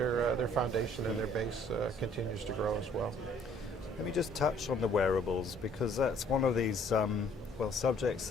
foundation and their base continues to grow as well. Let me just touch on the wearables, because that's one of these subjects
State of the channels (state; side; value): normal; both; correlation 0.60